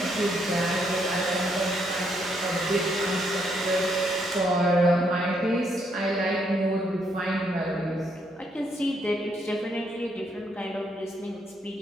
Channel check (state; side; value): normal; both; correlation 0.74